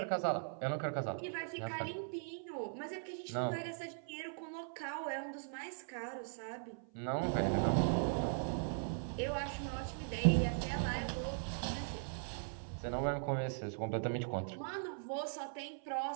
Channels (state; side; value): silent; left; 51 dB below the other